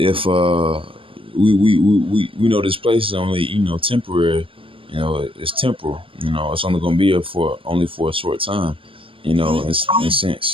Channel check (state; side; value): late; left; 0.26 ms